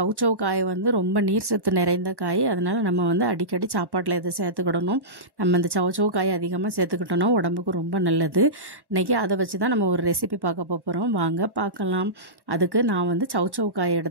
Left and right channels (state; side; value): late; left; 1.1 ms